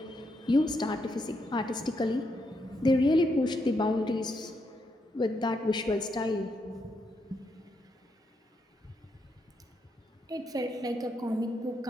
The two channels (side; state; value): both; normal; correlation 0.79